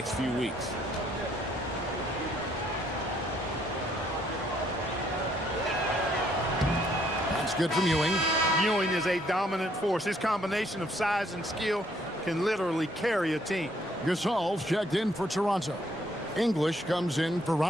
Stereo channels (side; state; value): both; normal; correlation 0.67